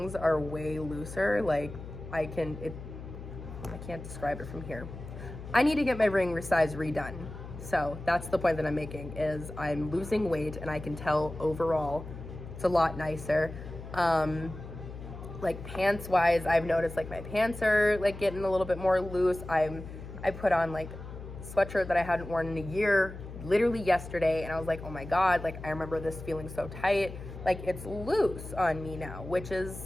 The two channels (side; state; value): left; noise; hum, 12 dB below the sound